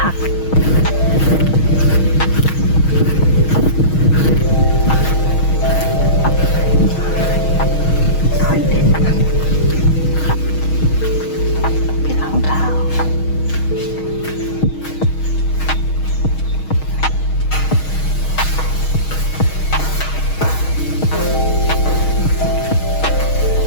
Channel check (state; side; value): late; right; 6.3 ms